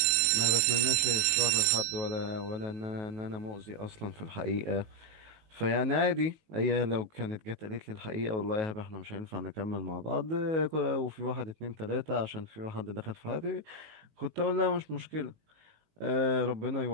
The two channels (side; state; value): left; late; 19 ms